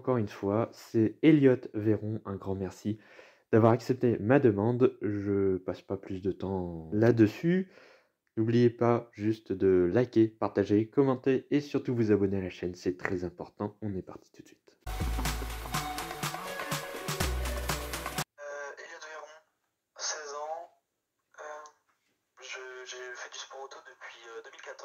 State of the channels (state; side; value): identical; both; correlation 1.00